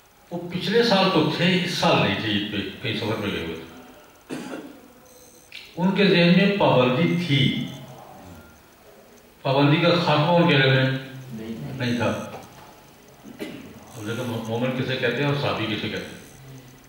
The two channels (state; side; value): identical; both; correlation 1.00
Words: وہ پچھلے سال تو تھے، اس سال نہیں تھے، عید پہ کئی سفر میں گئے ہوئے تھے. ان کے ذہن میں پابندی تھی، پابندی کا خاتمہ ان کے ذہن میں نہیں تھا. لیکن مومن کسے کہتے ہیں اور صحابی کسے کہتے ہیں.